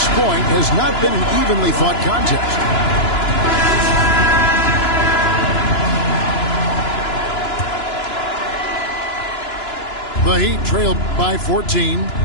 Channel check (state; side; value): late; right; 2.9 ms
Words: point has not been an evenly fought contest. The Heat trail by 14.